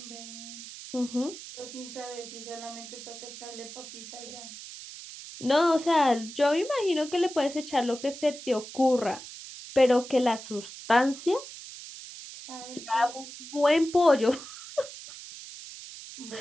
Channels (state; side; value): noise; right; hiss, 13 dB below the sound